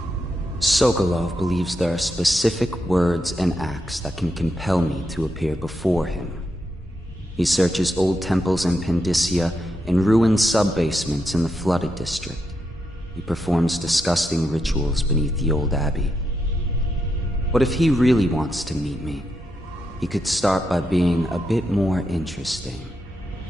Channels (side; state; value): both; normal; correlation 0.83